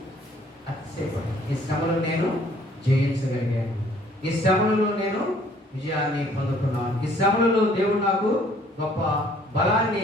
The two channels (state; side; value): normal; both; correlation 0.59